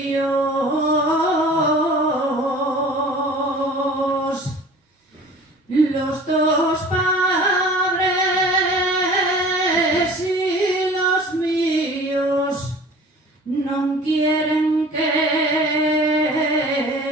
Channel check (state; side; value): normal; both; correlation 0.44